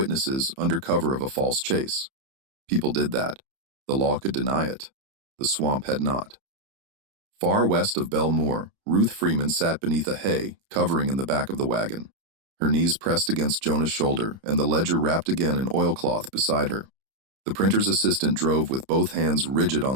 under cover of a false chase. People did that. The law could deny it. The swamp had not. Far west of Belle Moor, Ruth Freeman sat beneath a hay covering in the back of the wagon. Her knees pressed against Jonah's shoulder and the ledger wrapped again in oilcloth beside her. The printer's assistant drove with both hands rigid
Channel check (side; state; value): left; late; 30 ms